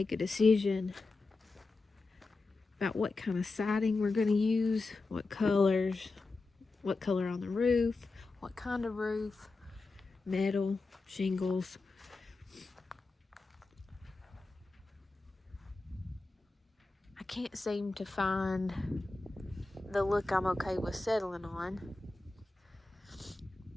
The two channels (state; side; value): quieter; right; 3.5 dB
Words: a decision about what kind of siding we're going to use, what colors, what color on the roof, what kind of roof, metal, shingles. I can't seem to find the look I'm okay with settling on.